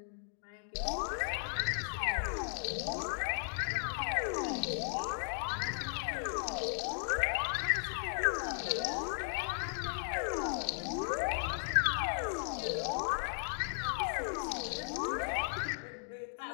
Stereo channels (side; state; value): right; silent; digital silence